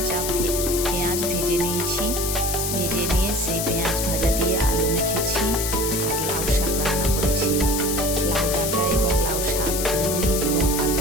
পেঁয়াজ ভেজে নিয়েছি। ভেজে নিয়ে সেই পেঁয়াজ ভাজা দিয়ে আলু মেখেছি। আর লাউ শাক রান্না করেছি। লাউ ডাঁটা এবং লাউ শাক মুড়ি এবং আলু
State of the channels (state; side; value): noise; left; hiss, 2 dB below the sound